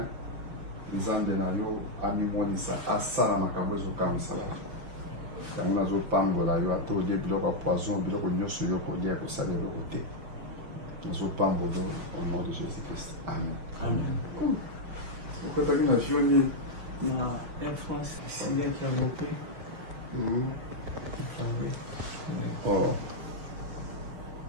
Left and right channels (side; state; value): left; late; 6.0 ms